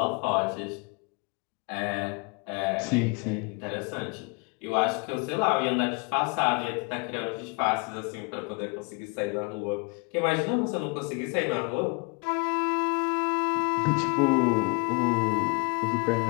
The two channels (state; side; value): quieter; right; 30.9 dB